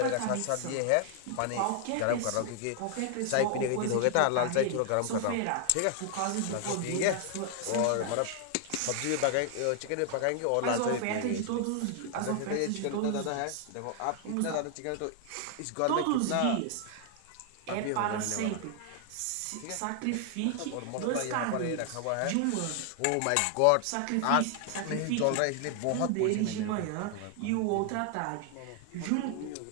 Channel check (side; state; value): both; different; correlation 0.00